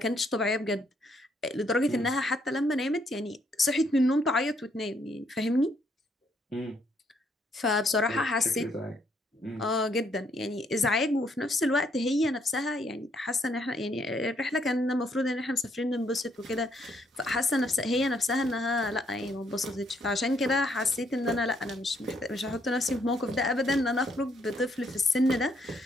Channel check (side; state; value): both; normal; correlation 0.71